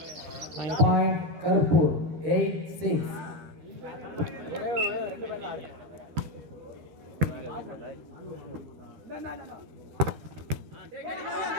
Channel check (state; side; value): late; left; 12 ms